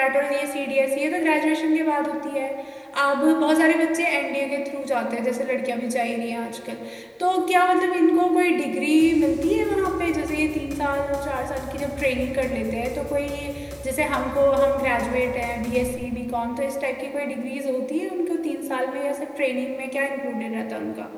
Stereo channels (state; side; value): identical; both; correlation 1.00